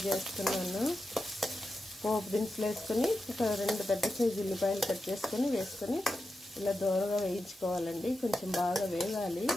చేస్తున్నాను. పోపు దినుసులు వేసుకొని ఒక 2 పెద్ద సైజు ఉల్లిపాయలు కట్ చేసుకొని వేసుకొని ఇలా దూరగా వేయించుకోవాలండి. కొంచెం బాగా వేగాలి.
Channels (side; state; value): both; normal; correlation 0.90